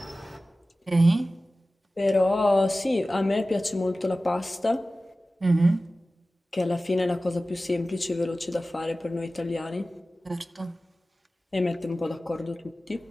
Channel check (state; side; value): normal; both; correlation 0.96